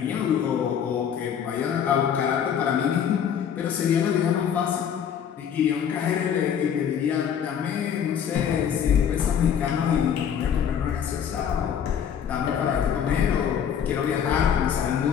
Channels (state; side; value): quieter; right; 8.3 dB